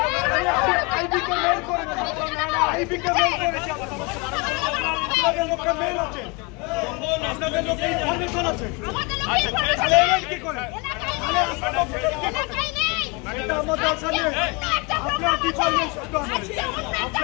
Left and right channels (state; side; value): quieter; right; 29.2 dB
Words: মেল আছে, আপনাদের লোক ইনফরমেশন আছে, কি করে এটা আমাদের সামনে আপনার ডিপার্টমেন্ট,